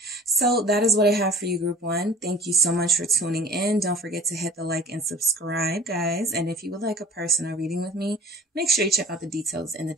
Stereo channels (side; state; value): both; normal; correlation 0.46